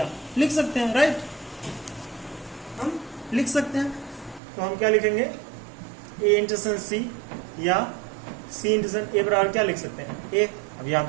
लिख सकते हैं, राइट। हम लिख सकते हैं। तो हम क्या लिखेंगे? ए इंटरसेक्शन सी या सी इंटरसेक्शन ए बराबर क्या लिख सकते हैं? ए। अब यहाँ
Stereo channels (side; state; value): left; drops out; at 4.4 s